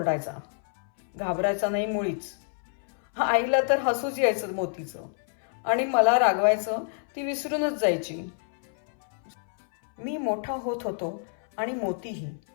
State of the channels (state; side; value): silent; right; 60 dB below the other